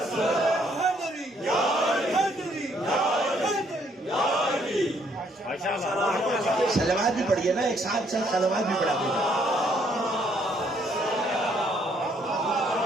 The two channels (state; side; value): normal; both; correlation 0.68